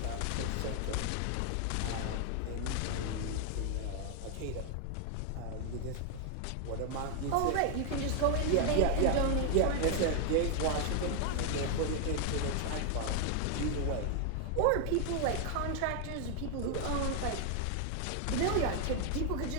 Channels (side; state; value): both; different; correlation 0.00